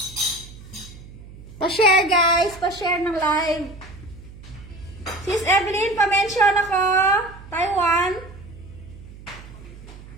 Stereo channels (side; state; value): right; noise; hum, 17 dB below the sound